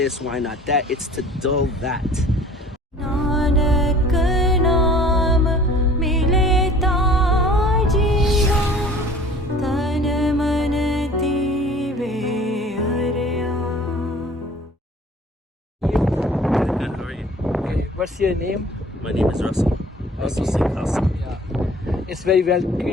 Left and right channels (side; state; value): both; normal; correlation 0.48